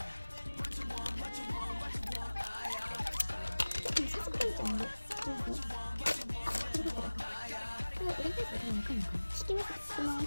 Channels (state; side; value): inverted; both; correlation -1.00